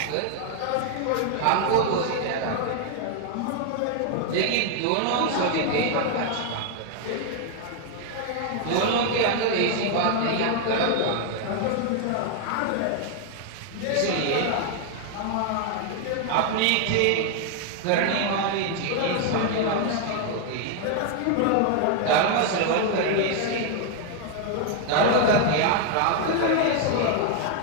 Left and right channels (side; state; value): both; different; correlation 0.00